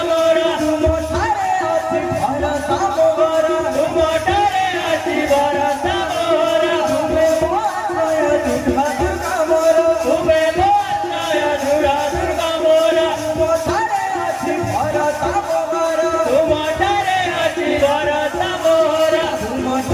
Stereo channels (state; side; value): identical; both; correlation 1.00